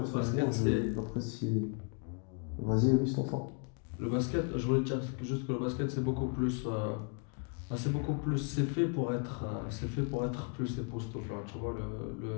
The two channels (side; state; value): right; quieter; 37.7 dB